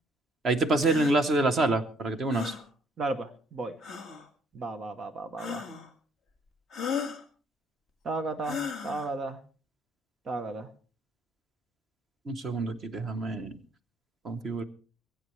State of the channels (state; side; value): normal; both; correlation 0.64